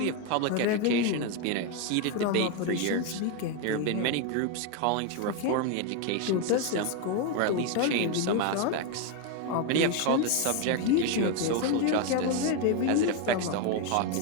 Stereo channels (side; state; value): both; different; correlation 0.02